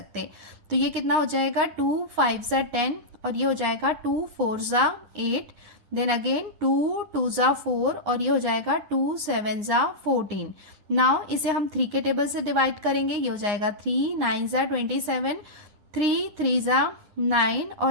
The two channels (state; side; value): late; left; 9.7 ms